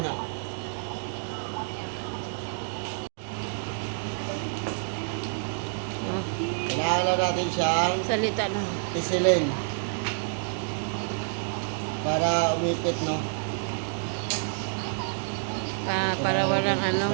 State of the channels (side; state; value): left; silent; digital silence